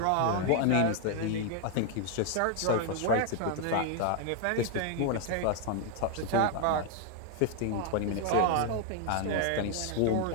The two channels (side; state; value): both; different; correlation 0.00